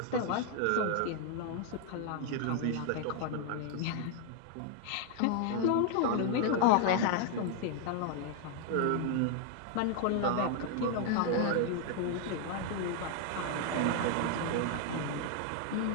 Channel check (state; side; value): different; both; correlation 0.00